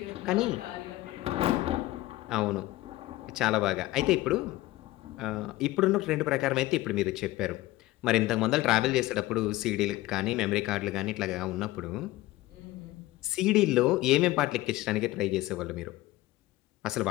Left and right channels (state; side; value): quieter; right; 17.7 dB